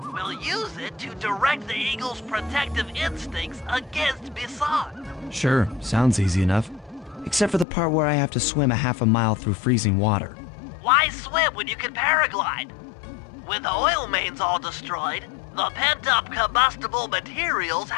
We'll use it to direct the eagle's protective instincts against Bison. Sure, sounds easy enough. Except for the part where I have to swim a half a mile through freezing water. Why swim when you can paraglide? With the oil mains all destroyed, the pent-up combustible materials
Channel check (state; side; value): drops out; right; at 7.7 s